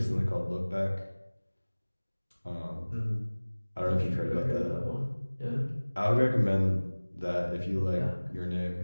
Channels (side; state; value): both; inverted; correlation -1.00